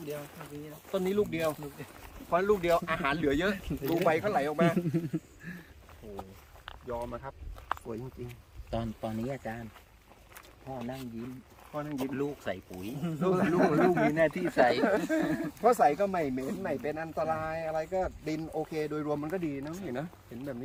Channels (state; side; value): identical; both; correlation 1.00